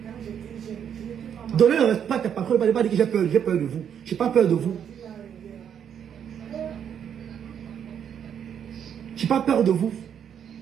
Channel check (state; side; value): quieter; left; 8.5 dB